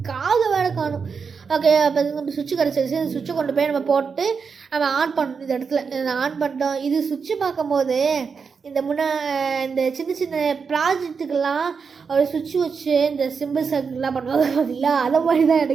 காது வேலை காணும். ஓகே, அப்போ நம்ம சுவிட்சு கிடச்சிருச்சு. இந்த சுவிட்சை கொண்டு போய் நம்ம போட்டு நம்ம ஆன் பண்ணணும். இந்த இடத்துல ஆன் பண்ணிட்டோம். இது சுவிட்சு பார்க்கும்போது இந்த இந்த சின்ன ப்ராஜெக்ட்டுக்கெல்லாம் ஒரு சுவிட்ச் வச்சு இந்த சிம்பிள் சர்க்கிள்லாம் பண்ணுவாங்க பார்த்தீங்களா, அதை மாதிரி தான்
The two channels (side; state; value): left; quieter; 5.6 dB